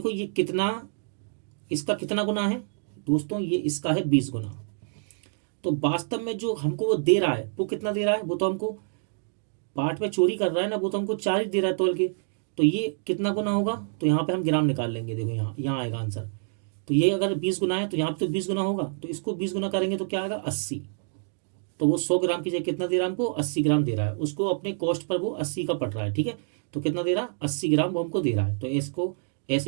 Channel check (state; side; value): silent; left; digital silence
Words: ये कितना, इसका कितना गुना है दोस्तों, ये इसका है 20 गुना। तो वास्तव में जो हमको वो दे रहा है वो कितना दे रहा है, वो तो हमको बाट में चोरी कर रहा है ना, वो तो हमको 4 ही दे रहा है तोल के। तो ये कितना गुना होगा, तो यहाँ पे हम ग्राम निकाल लेंगे, देखो यहाँ आएगा आंसर। तो ये अगर 20 गुना है तो यहाँ पे तो 20 गुना होगा, तो इसको 20 गुना करेंगे तो क्या आएगा, 80। तो वो 100 ग्राम की जगह कितना दे रहा है हमको, 80 ग्राम दे रहा है। उसको अपने कॉस्ट पर वो 80 का पड़ रहा है। ठीक है, तो कितना दे रहा है, 80 ग्राम वो हमको दे रहा है। तो इसको